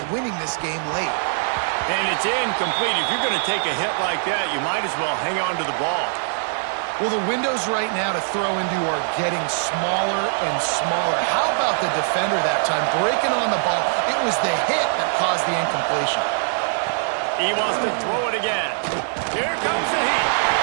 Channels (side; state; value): left; silent; digital silence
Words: winning this game late. And it's incomplete. If you're going to take a hit like that, you might as well hang on to the ball. Well, the windows right now to throw into are getting smaller and smaller. How about the defender that time breaking on the ball? It was the hit that caused the incompletion. He wants to throw it again. Here comes the heat.